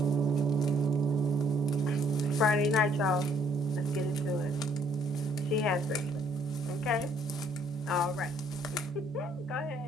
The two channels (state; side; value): normal; both; correlation 0.64